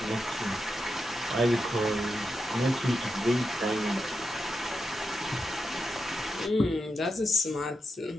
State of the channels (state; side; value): normal; both; correlation 0.87